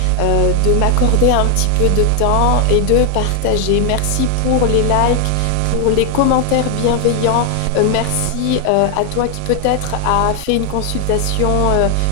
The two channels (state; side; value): different; both; correlation 0.00